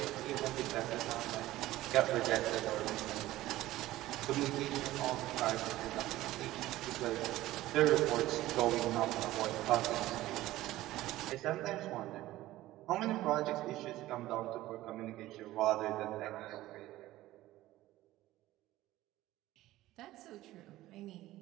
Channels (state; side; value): quieter; left; 16.1 dB